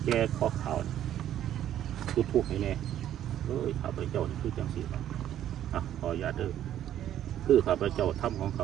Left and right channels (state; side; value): quieter; left; 11.3 dB